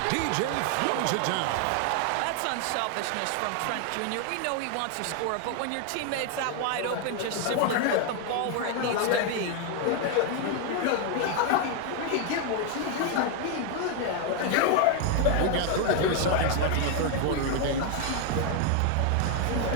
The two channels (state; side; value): different; both; correlation 0.01